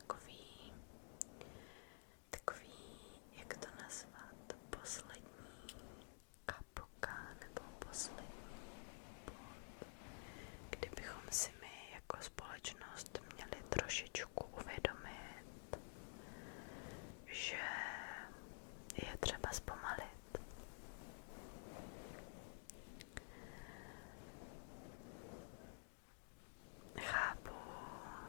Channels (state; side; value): silent; right; digital silence